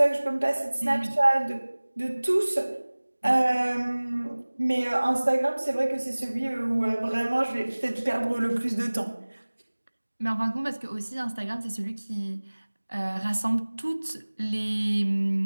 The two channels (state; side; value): inverted; both; correlation -1.00